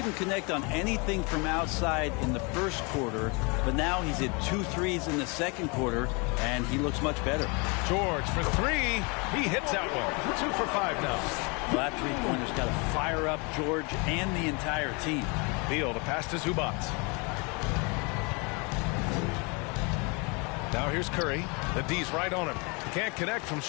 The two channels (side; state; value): right; quieter; 30.5 dB